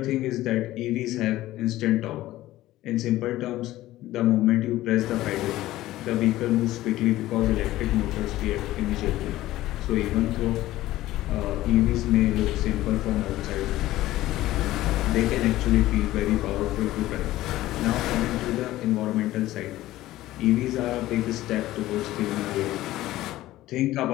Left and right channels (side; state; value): right; quieter; 15.8 dB